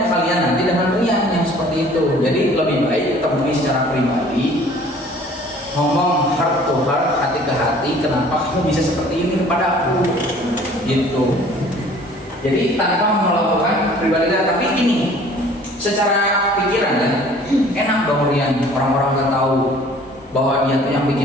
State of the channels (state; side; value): normal; both; correlation 0.52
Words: kalian nanti dengan Rian yang seperti itu? Jadi lebih baik temui secara pribadi, ngomong heart to heart, hati ke hati, kenapa kamu bisa seperti ini kepada aku, gitu. Jadi tanpa melakukan pribadi, tapi ini secara pikiran ya, enak dong Rian, orang-orang nggak tahu bahwa dia tuh yang